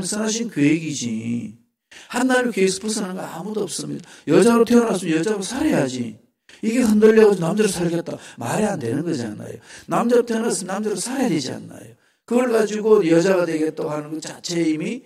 선하신 계획이지. 하나님 계획에서 벗어나는 거 아무도 없습니다. 여자로 태어났으면 여자로 살아야지. 이게 흔들려가지고 남자로 살겠다. 말이 안 되는 거잖아요. 남자로 태어났으면 남자로 살아야 되지 않나요? 그걸 가지고 여자가 되겠다고 하는 것 자체에 이미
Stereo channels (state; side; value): identical; both; correlation 1.00